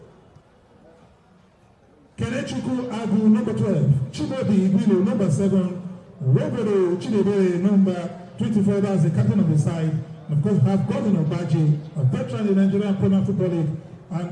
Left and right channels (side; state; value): both; identical; correlation 1.00